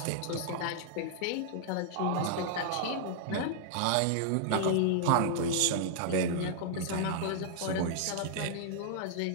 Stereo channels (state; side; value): different; both; correlation -0.01